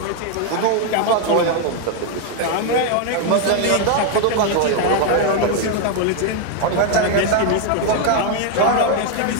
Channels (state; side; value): different; both; correlation 0.01